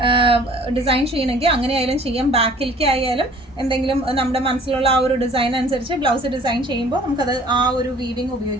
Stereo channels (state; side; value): normal; both; correlation 0.52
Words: ഡിസൈൻ ചെയ്യണമെങ്കിൽ അങ്ങനെ ആയാലും ചെയ്യാം. ബാക്കിലേക്ക് ആയാലും എന്തെങ്കിലും നമ്മുടെ മനസ്സിലുള്ള ആ ഒരു ഡിസൈൻ അനുസരിച്ച് ബ്ലൗസ് ഡിസൈൻ ചെയ്യുമ്പോൾ നമുക്കത് ആ ഒരു വീവിങ്